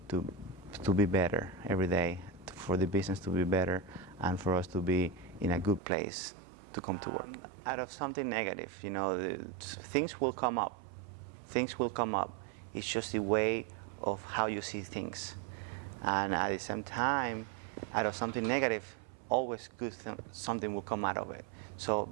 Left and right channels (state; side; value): drops out; left; at 5.8 s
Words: to be better every day, for the business to be better and for us to be in a good place to come to work. Out of something negative, you know, things will come up. Things will come up. It's just the way of how you see things. And at the same time, out of something negative, always good something will come out of it. So